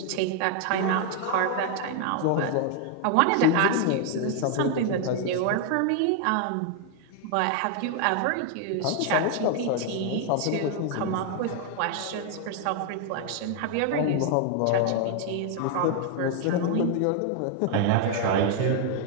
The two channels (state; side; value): different; both; correlation 0.00